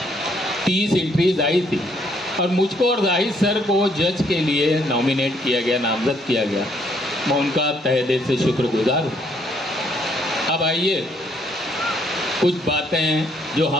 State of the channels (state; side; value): normal; both; correlation 0.69